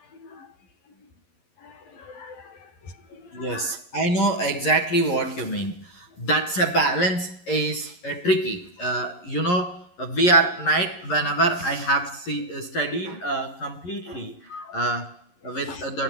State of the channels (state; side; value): late; right; 11 ms